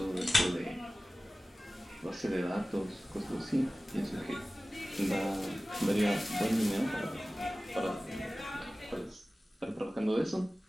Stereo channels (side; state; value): both; normal; correlation 0.97